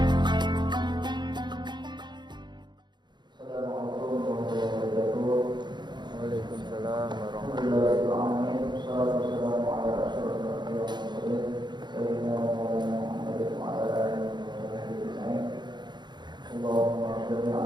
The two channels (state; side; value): late; left; 0.21 ms